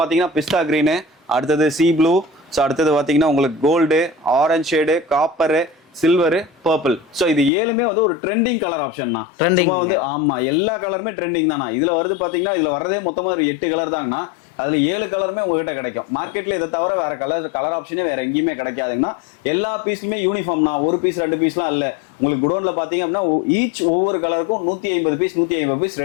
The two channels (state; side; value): drops out; right; at 7.5 s